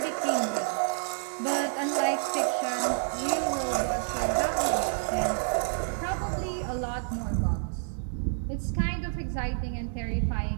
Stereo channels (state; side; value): silent; left; digital silence